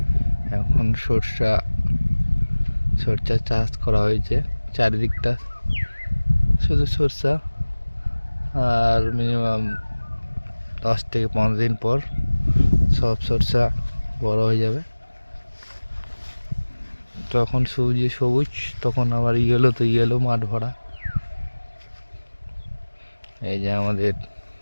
এখন সরষা চাষ করা হয়েছে। চারিদিকটা শুধু সরষা, আর মিনিমাম 10 থেকে 15 দিন পর সব সরষা বড় হয়ে যাবে। তখন সবুজ, তখন আবার ইয়েলো, তো ইয়েলো মাঠ ভরা। এই যে আমাদের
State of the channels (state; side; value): inverted; both; correlation -1.00